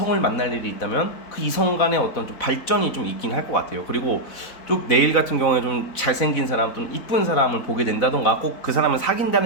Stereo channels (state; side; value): late; right; 4.0 ms